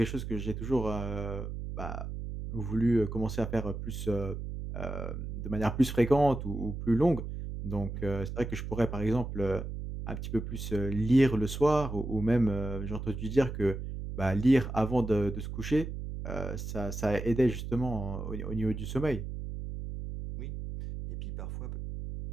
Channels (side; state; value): right; noise; hum, 6 dB below the sound